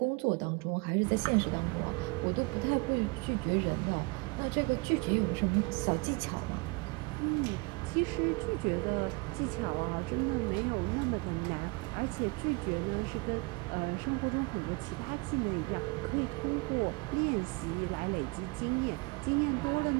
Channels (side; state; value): left; quieter; 28.1 dB